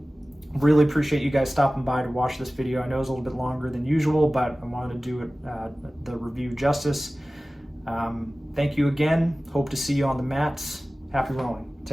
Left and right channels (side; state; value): both; normal; correlation 0.97